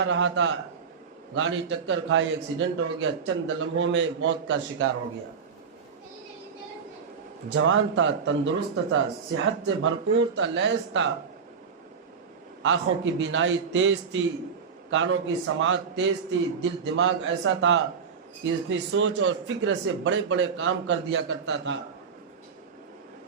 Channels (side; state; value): left; quieter; 6.1 dB